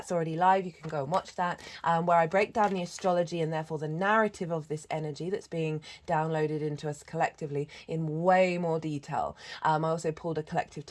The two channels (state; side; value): identical; both; correlation 1.00